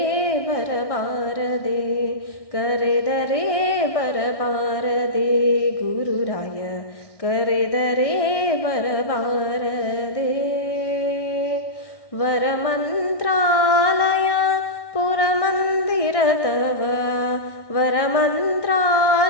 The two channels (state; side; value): late; right; 1.6 ms